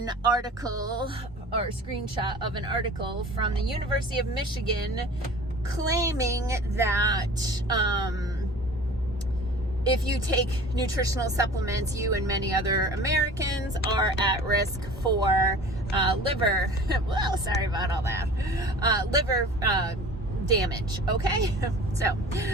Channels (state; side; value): normal; both; correlation 0.42